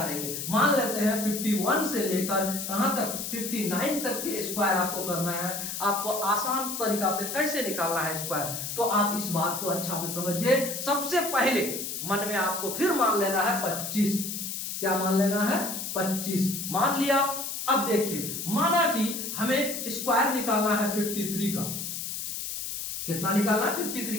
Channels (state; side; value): noise; left; hiss, 5 dB below the sound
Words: मान लेते हैं 51 से लेकर कहां तक 59 तक के स्क्वायर आपको करना है। आपको आसान तरीका से कैसे निकालना है स्क्वायर, तो आप इस बात को अच्छा से समझिए। सबसे पहले मन में आपको फिर मान लेना है 25। क्या मान लेना है? 25 मान लिया। अब देखिए, माना कि हमें स्क्वायर निकालना है 53 का। कितना निकालना है? 53